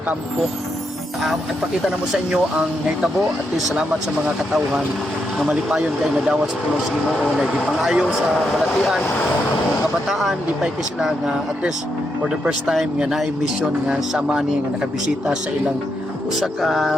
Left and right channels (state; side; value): normal; both; correlation 0.81